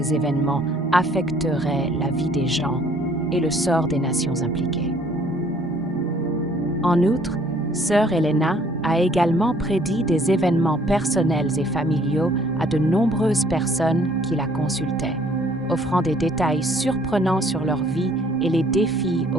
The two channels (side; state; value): both; normal; correlation 0.60